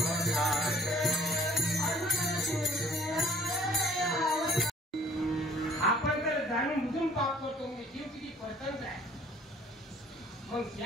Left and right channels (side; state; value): both; normal; correlation 0.55